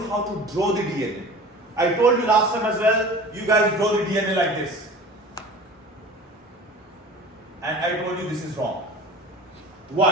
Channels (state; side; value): normal; both; correlation 0.39